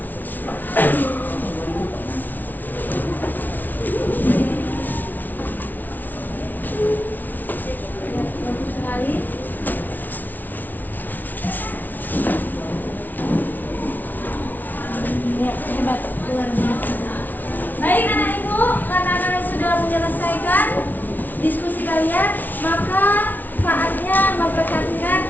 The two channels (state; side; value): late; right; 0.083 ms